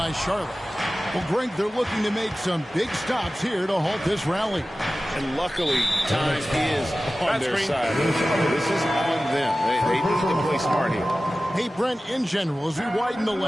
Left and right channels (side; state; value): both; normal; correlation 0.96